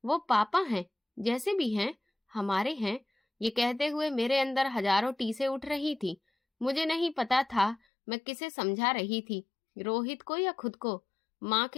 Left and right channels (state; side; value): drops out; right; at 7.8 s